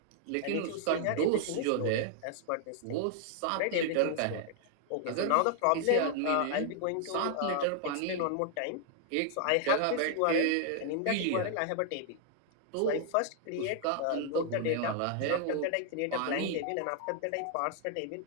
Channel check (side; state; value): both; different; correlation 0.00